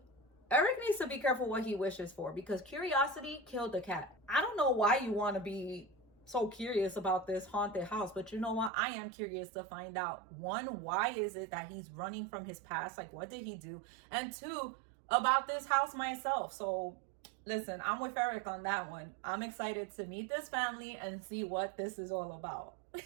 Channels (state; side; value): drops out; left; at 8.7 s